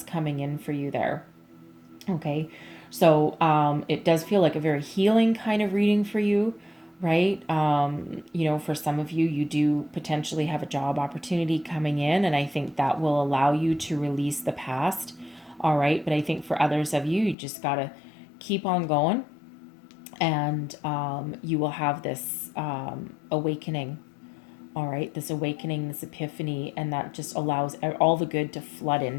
coming in for you there. Okay. So it does feel like a very healing kind of reading for you, right? For some of you, you do potentially have a job opportunity coming in, and I think that will allow you to release the past. All right. But I think for others of you, you just got to keep on going, and you will have this awakening. All right. This awakening, this epiphany, and that just allows all the good to flood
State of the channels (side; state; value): right; drops out; at 17.4 s